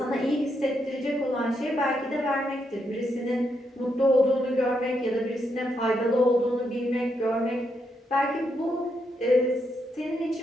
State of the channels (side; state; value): both; normal; correlation 0.80